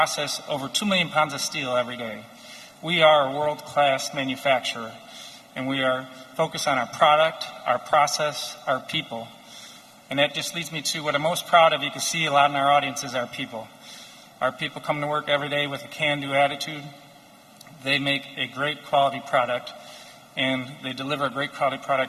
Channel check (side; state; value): both; identical; correlation 1.00